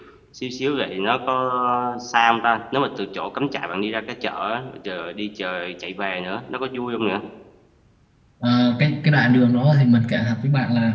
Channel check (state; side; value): identical; both; correlation 1.00